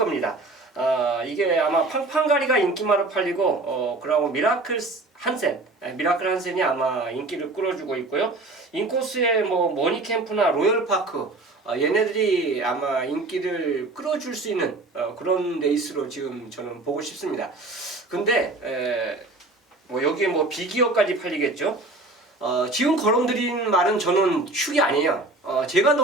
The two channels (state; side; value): quieter; left; 3.0 dB